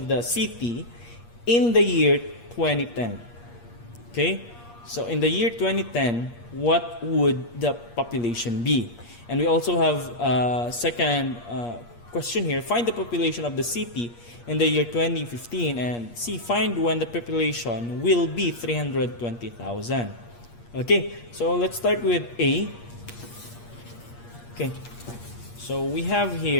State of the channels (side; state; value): right; late; 8.5 ms